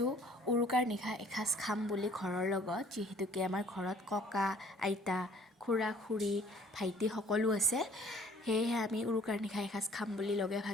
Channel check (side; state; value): both; normal; correlation 0.56